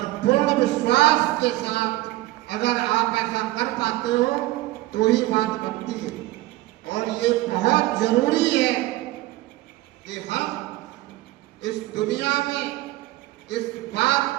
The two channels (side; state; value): left; quieter; 17.8 dB